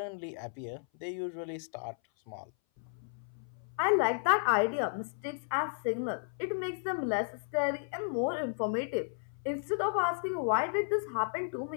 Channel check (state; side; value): silent; right; 55 dB below the other